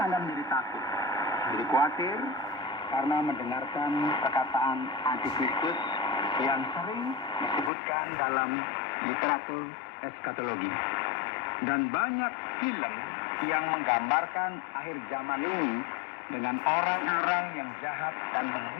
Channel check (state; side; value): drops out; right; at 7.7 s